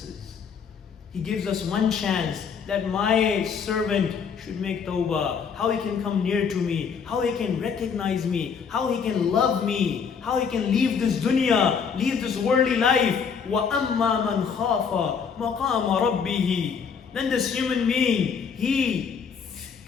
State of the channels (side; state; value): right; quieter; 6.4 dB